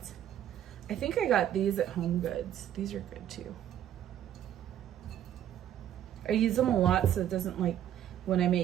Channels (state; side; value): quieter; left; 10.9 dB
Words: I think I got these at Home Goods. These are good too. I use them a lot so it doesn't like when